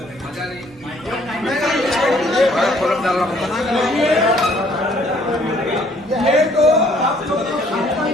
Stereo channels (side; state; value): both; normal; correlation 0.61